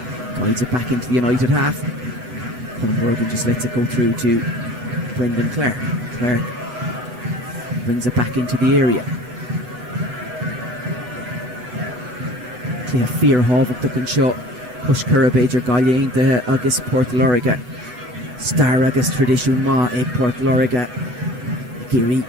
guides it back into the United half. Colin Morgan just lets it go through to Brendan Clark. Clark brings it back into the area. Clea Fear Havok Duckin Shaw. Push Curabage or Galliane de Agus Port Loriga. Star Agus Tradition Ma Egg Port Loriga. Geary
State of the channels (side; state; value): left; late; 7.4 ms